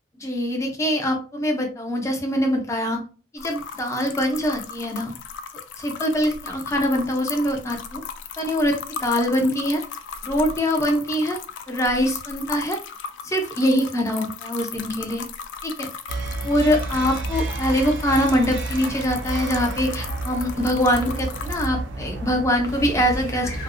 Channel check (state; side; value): normal; both; correlation 0.59